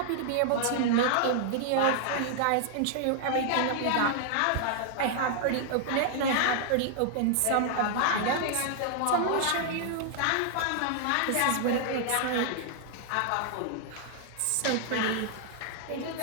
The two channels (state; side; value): different; both; correlation 0.00